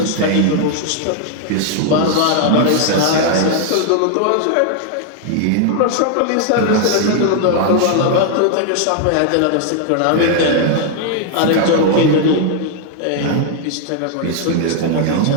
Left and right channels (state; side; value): different; both; correlation 0.00